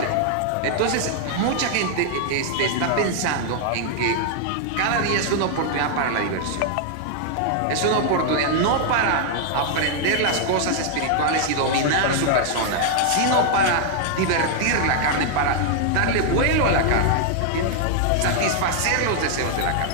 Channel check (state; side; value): different; both; correlation 0.00